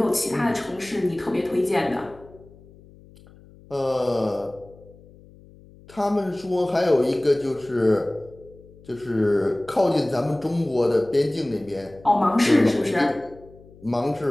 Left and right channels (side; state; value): left; noise; hum, 24 dB below the sound